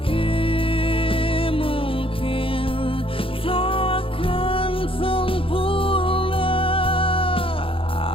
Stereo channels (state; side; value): late; right; 0.26 ms